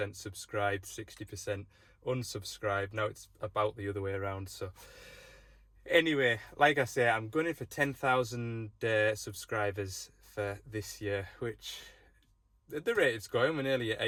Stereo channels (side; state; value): both; identical; correlation 1.00